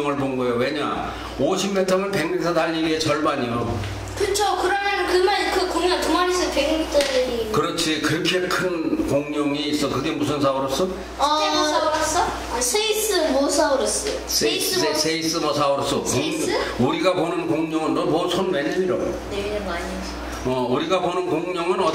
본 거예요. 왜냐? 50m면 100m 달리기의 절반이요. 그쵸. 그러면 그 공룡 두 마리 있으면 100m짜리. 그렇지. 그렇게 큰 공룡이 있어. 그게 무슨 사우루스? 스테고사우루스? 세이스모사우루스. 세이스모사우루스. 세이스? 우리가 보는 공룡은 너 뭐 손 왜 내밀어? 내리는 거 아니에요? 우리가 보는 공룡은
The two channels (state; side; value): identical; both; correlation 1.00